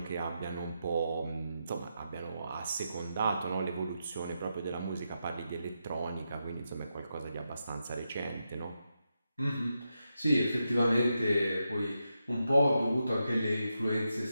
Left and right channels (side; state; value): both; inverted; correlation -0.86